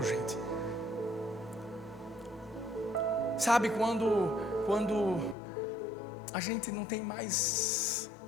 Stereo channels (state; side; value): drops out; right; at 5.4 s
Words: gente. Sabe, quando a gente não tem mais